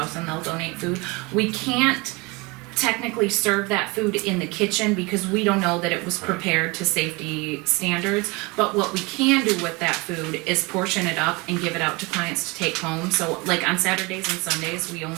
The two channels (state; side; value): quieter; left; 26.2 dB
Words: and they'll donate food. We can't technically serve that food in the kitchen because we don't know that it was prepared to safety standards. But what we can do with that food is portion it up and give it out to clients to take home. So like on Saturdays and Sundays, we